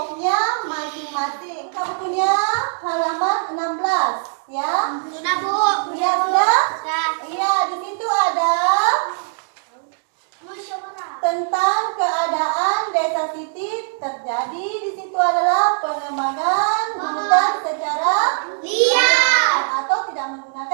masing-masing. Kamu punya halaman 16 ya? Sudah, Bu. Sudah? Iya, di situ ada Musyawarah. tentang keadaan desa Siti terjadi. Di situ adalah pengembangan hutan secara Diam. atau tidak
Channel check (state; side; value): silent; left; digital silence